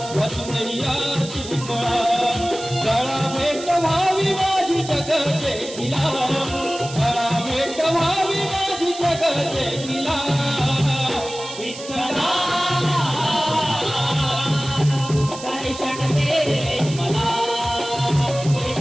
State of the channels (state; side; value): noise; right; hiss, 13 dB below the sound